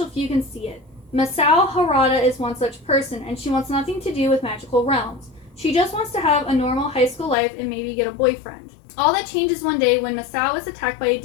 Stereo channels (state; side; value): drops out; right; at 7.4 s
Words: few can see it. Masao Harada is one such person, and she wants nothing to do with magical realms. She just wants to have a normal high school life and maybe get a boyfriend. All that changes one day when Masao is attacked by a